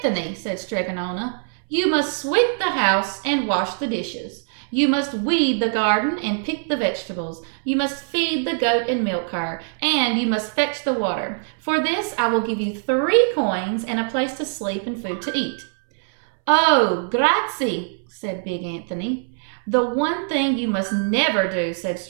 said Stregonona, "you must sweep the house and wash the dishes. You must weed the garden and pick the vegetables. You must feed the goat and milk her, and you must fetch the water. For this I will give you 3 coins and a place to sleep and food to eat." "Oh, grazie," said Big Anthony. "The one thing you must never do," said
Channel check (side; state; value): left; silent; 64 dB below the other